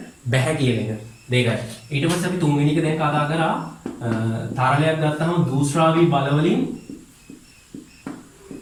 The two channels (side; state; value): both; identical; correlation 1.00